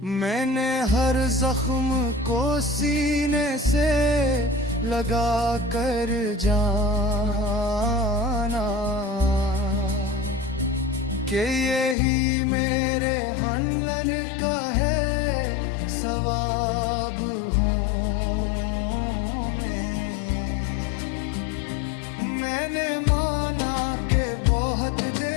मैंने हर जख्म को सीने से लगा कर जाना कि यही मेरे हनलन का है सवाब हूँ मैंने माना कि बहुत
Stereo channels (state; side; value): drops out; right; at 12.0 s